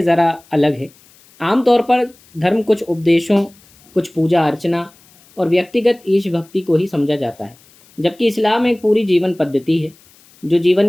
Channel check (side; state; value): left; noise; hiss, 29 dB below the sound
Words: ज़रा अलग है। आमतौर पर धर्म कुछ उपदेशों, कुछ पूजा अर्चना और व्यक्तिगत ईश भक्ति को ही समझा जाता है, जबकि इस्लाम एक पूरी जीवन पद्धति है जो जीवन